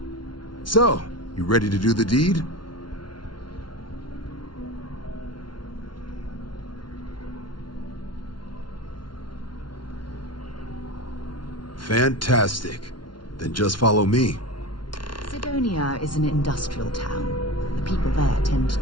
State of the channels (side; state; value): right; late; 0.72 ms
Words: So, you ready to do the deed? Fantastic. Then just follow me. Sidonia is an industrial town. The people there tend